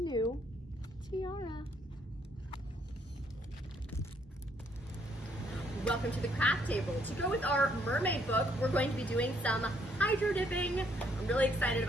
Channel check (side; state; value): both; normal; correlation 0.68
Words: tiara. Welcome to the craft table. To go with our mermaid book, we're going to be doing some hydro dipping. I'm really excited